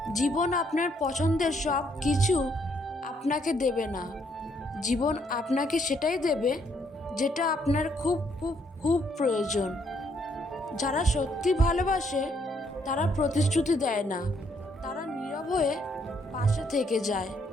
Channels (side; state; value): both; normal; correlation 0.71